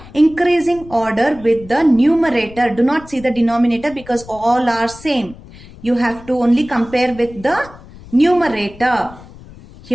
increasing order with the numerator. Do not see the denominator because all are same. You have to only compare with the numerator.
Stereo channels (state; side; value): noise; left; rumble, 19 dB below the sound